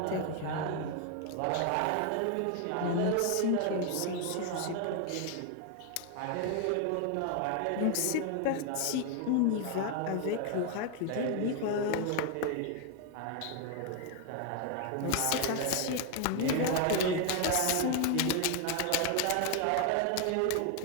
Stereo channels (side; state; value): both; different; correlation 0.01